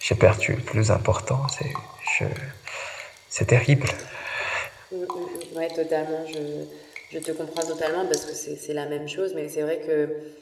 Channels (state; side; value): identical; both; correlation 1.00